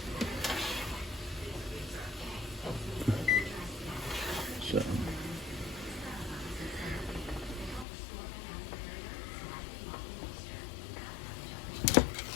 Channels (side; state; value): right; drops out; at 7.9 s